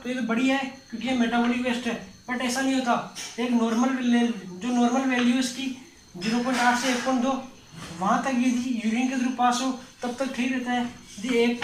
तो ये तो बढ़िया है क्योंकि ये मेटाबॉलिक वेस्ट है, बट ऐसा नहीं होता। एक नॉर्मल वैल्यू इसकी 0.8 से 1.2 वहाँ तक यदि यूरिन के थ्रू पास हो तब तक ठीक रहता है। यदि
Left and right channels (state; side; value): identical; both; correlation 1.00